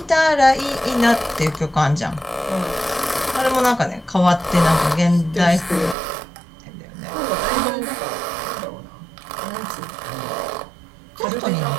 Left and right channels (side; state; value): left; drops out; at 6.0 s